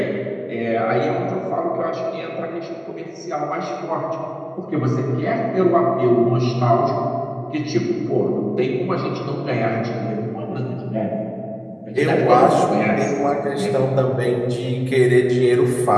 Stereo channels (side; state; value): both; identical; correlation 1.00